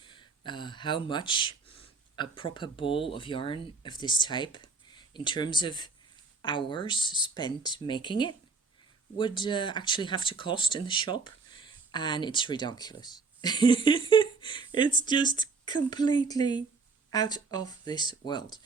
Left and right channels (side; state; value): left; quieter; 4.4 dB